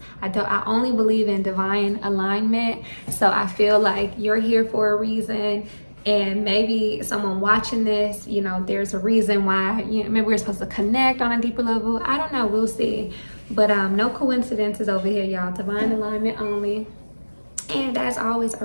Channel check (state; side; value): inverted; both; correlation -1.00